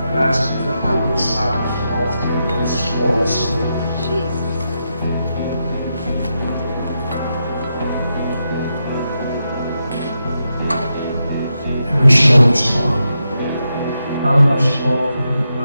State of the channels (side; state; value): both; inverted; correlation -0.85